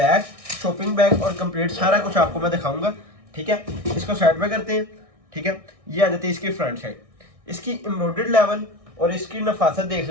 शॉपिंग बैग और कंप्लीट सारा कुछ आपको मैं दिखाऊंगा। ठीक है, इसको साइड में करते हैं। ठीक है, ये आ जाती है इसकी फ्रंट साइड। इसकी एम्ब्रॉयडर्ड लेवल और इसकी नफासत देख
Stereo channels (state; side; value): late; left; 1.6 ms